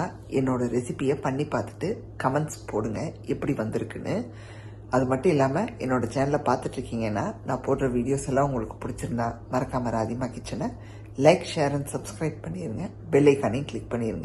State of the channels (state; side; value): identical; both; correlation 1.00